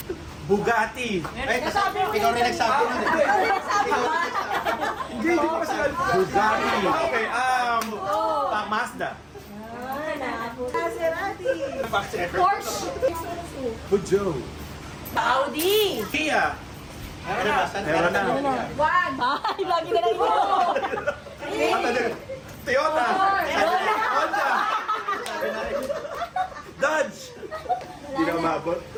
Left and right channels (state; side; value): identical; both; correlation 1.00